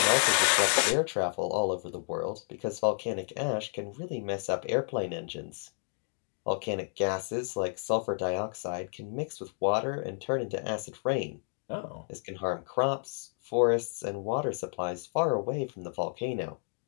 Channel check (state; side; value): silent; right; 57 dB below the other